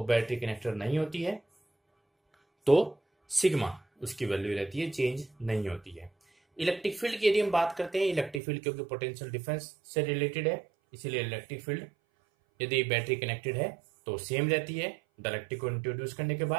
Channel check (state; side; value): drops out; left; at 8.4 s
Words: बैटरी कनेक्टेड नहीं होती है तो सिग्मा उसकी वैल्यू रहती है, चेंज नहीं होती है। इलेक्ट्रिक फील्ड की यदि हम बात करते हैं, इलेक्ट्रिक फील्ड क्योंकि पोटेंशियल डिफरेंस से रिलेटेड है, इसीलिए इलेक्ट्रिक फील्ड यदि बैटरी कनेक्टेड है तो सेम रहती है डाइलेक्ट्रिक को इंट्रोड्यूस करने के